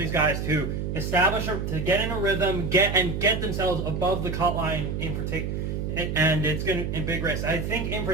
guys to establish to get in a rhythm, get themselves above the cut line in particular, and it's gonna in big race. I think in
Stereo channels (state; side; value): noise; right; hum, 3 dB below the sound